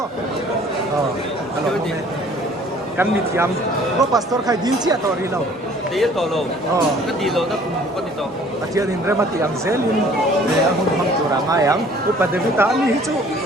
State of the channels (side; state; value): both; normal; correlation 0.54